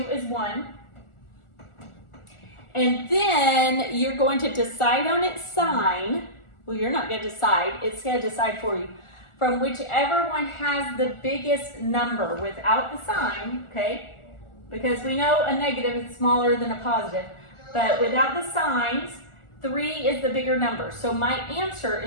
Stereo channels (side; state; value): right; late; 1.4 ms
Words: is 1. And then you're going to decide on its sign. Well, you're not going to decide. It's going to decide for you. From whichever one has the biggest number without the sign, okay? Because we know a negative is smaller than a positive. But without the signs, 3 is the bigger number. So my answer